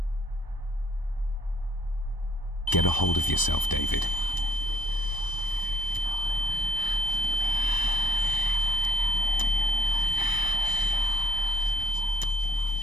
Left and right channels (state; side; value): late; right; 1.0 ms